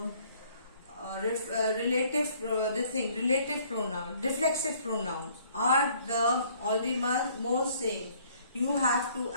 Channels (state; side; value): inverted; both; correlation -0.60